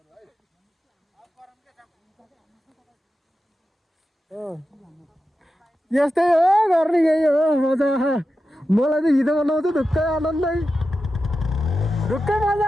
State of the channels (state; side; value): normal; both; correlation 0.91